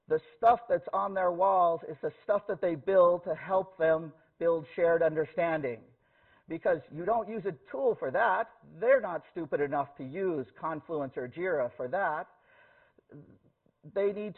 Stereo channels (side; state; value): both; identical; correlation 1.00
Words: The stuff that's on their walls is the stuff that they build to help them build shared understanding. Because you don't use a tool for that. They're not stupid enough to use Confluence or Jira for that. They need